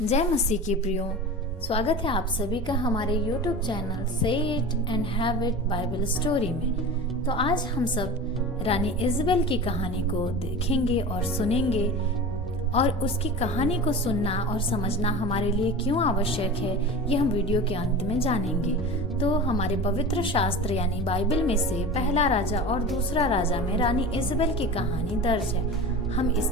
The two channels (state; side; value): normal; both; correlation 0.32